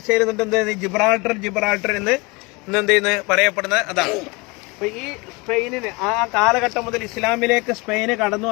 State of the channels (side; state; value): right; quieter; 26.5 dB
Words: എന്നിട്ട് ജിബ്രാൾട്ടർ എന്ന് എന്ത് ചെയ്യുന്നത് പറയപ്പെടുന്നത് അതാണ്. അപ്പൊ ഈ സ്പെയിനിന് ആ കാലഘട്ടം മുതൽ ഇസ്ലാമിലേക്ക് സ്പെയിന് കടന്നു